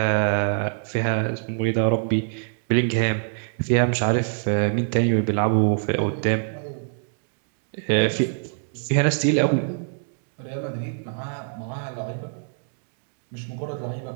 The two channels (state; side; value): silent; left; digital silence